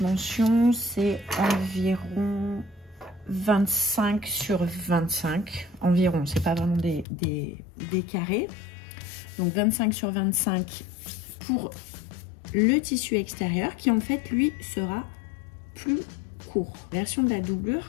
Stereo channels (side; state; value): right; drops out; at 7.1 s